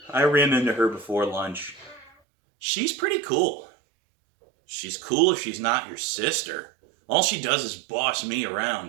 I ran into her before lunch. She's pretty cool." "She's cool if she's not your sister. All she does is boss me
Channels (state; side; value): drops out; left; at 2.1 s